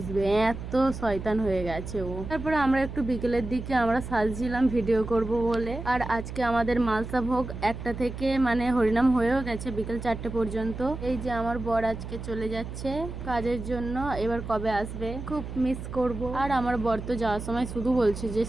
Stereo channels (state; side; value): noise; right; hum, 9 dB below the sound